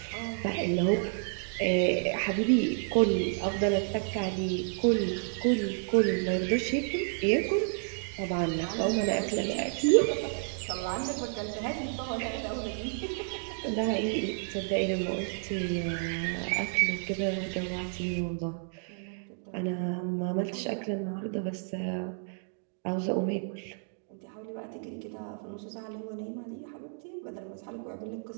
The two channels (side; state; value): left; silent; digital silence